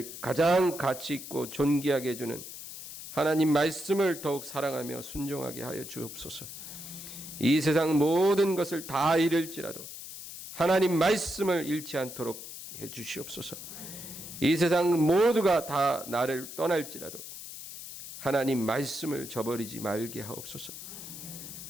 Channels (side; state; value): left; noise; hiss, 11 dB below the sound